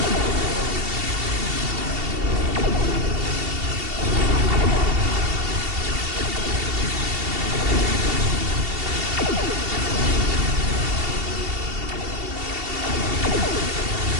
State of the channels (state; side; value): late; left; 2.7 ms